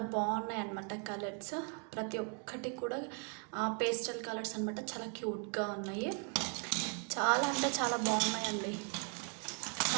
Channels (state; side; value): quieter; left; 40.0 dB